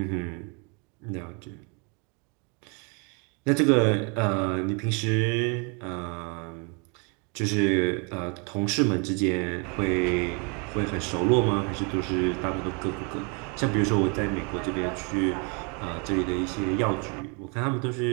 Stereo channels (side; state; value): left; quieter; 34.7 dB